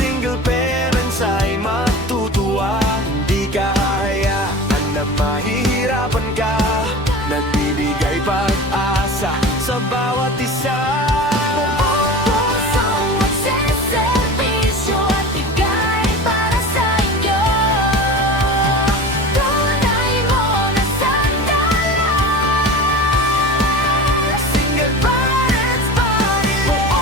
parents ay matutuwa. Hindi ka hahayaan na mahihirapan ka. Nagbibigay pag-asa sa bawat isa.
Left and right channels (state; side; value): normal; both; correlation 0.33